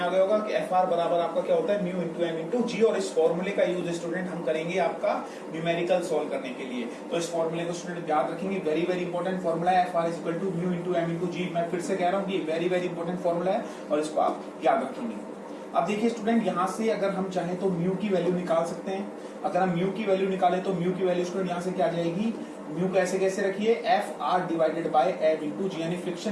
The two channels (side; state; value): both; identical; correlation 1.00